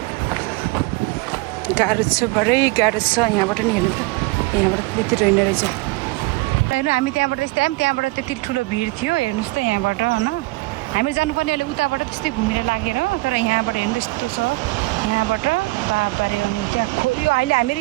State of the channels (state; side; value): quieter; left; 22.9 dB